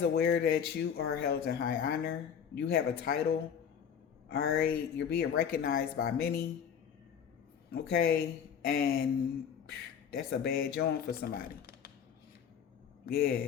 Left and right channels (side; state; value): right; quieter; 7.8 dB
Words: aware that you are held in high honor. You have a title. All right. You're being recognized by many. Okay. And that's a bad joint for somebody. Yeah,